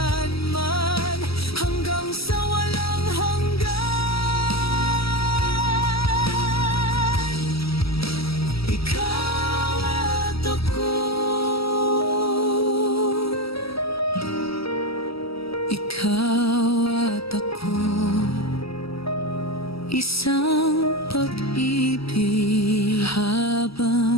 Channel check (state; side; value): late; right; 0.76 ms